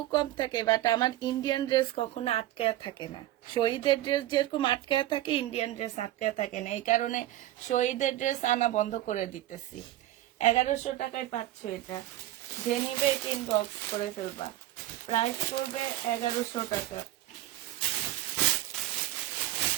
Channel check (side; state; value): left; quieter; 14.8 dB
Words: কম থাকে, বাট আমার ইন্ডিয়ান ড্রেস কখনো আটকায়া থাকে না। শহীদের ড্রেস যেরকম আটকায়া থাকে, ইন্ডিয়ান ড্রেস আটকায়া থাকে না। এই কারণে শহীদের ড্রেস আনা বন্ধ করে দিতেছি। 1100 টাকায় পাচ্ছ এটা। যে নিবে 3 বক্স করে ফেলবা। প্রাইস পড়বে 1100 টাকা।